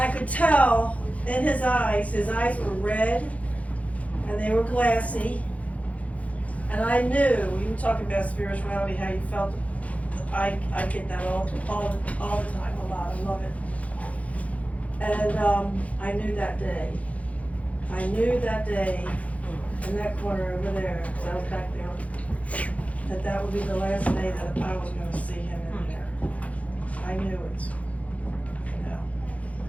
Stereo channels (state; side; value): late; right; 0.067 ms